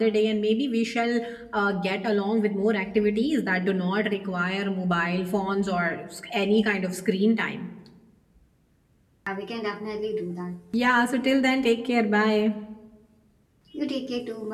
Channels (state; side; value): identical; both; correlation 1.00